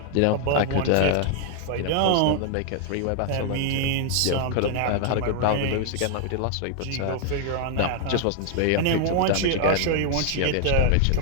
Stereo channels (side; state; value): both; different; correlation 0.00